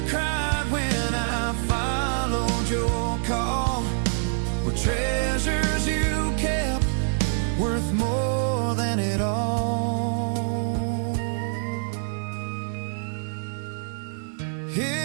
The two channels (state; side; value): silent; left; digital silence